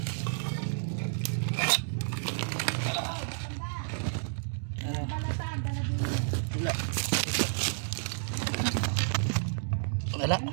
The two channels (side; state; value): left; silent; digital silence